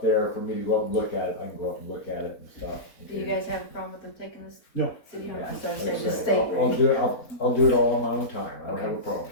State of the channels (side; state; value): right; late; 4.0 ms